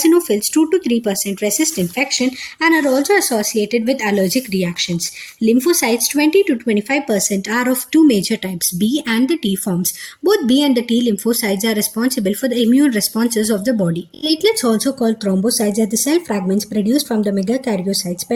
2 to 3%, resist infection and are also associated with allergic reactions. Lymphocytes, 20 to 25%, are of two major types, B and the T forms. Both B and the T lymphocytes are responsible for the immune responses of the body. Platelets, also called thrombocytes, are the cell fragments produced from the megakaryocytes,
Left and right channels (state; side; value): identical; both; correlation 1.00